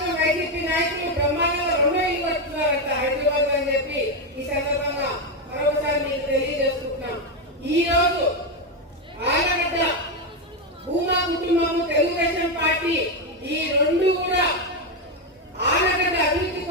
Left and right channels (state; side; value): normal; both; correlation 0.07